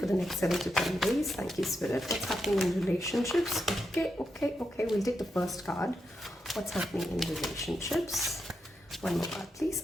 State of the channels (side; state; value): both; normal; correlation 0.85